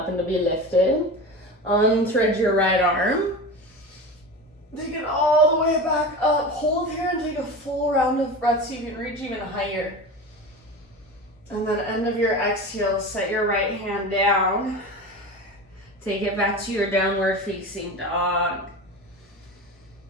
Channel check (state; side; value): normal; both; correlation 0.29